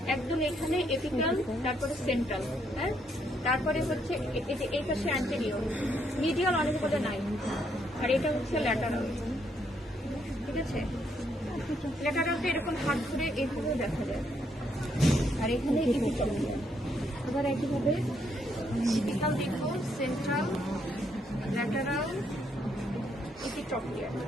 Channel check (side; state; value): both; normal; correlation 0.74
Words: একদম এখানে এপিক্যাল, তারপরে সেন্ট্রাল। হ্যাঁ, তারপরে হচ্ছে এই পাশে অ্যান্টেরিয়র। মিডিয়াল অনেক বলে নাই। আর এটা হচ্ছে ল্যাটারাল, ঠিক আছে। ল্যাটারালটা এরকম হাত ধরে এইভাবে দেখা যায়। আর এখানে এপিক্যাল। আবার একইভাবে এপিক্যাল দেখবো, সেন্ট্রাল, ল্যাটারাল, এপিট্রপিয়াল,